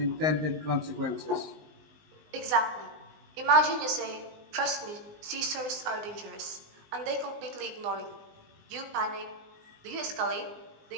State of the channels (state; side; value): late; left; 19 ms